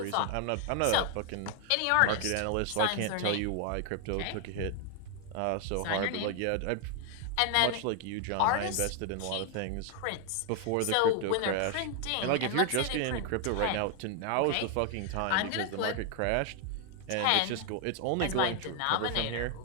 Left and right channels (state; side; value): different; both; correlation 0.00